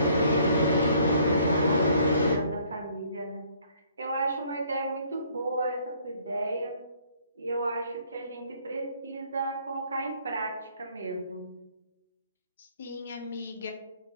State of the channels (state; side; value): inverted; both; correlation -0.62